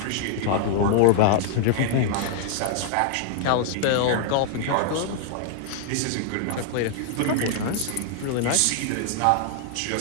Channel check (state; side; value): different; both; correlation 0.00